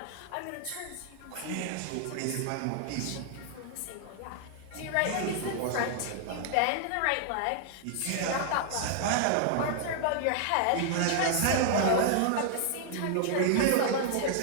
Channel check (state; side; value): different; both; correlation 0.00